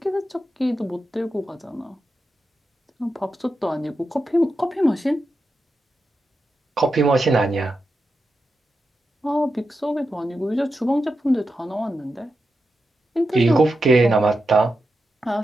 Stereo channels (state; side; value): normal; both; correlation 0.89